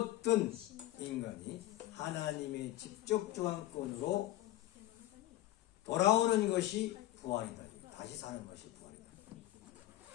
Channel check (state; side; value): quieter; right; 15.2 dB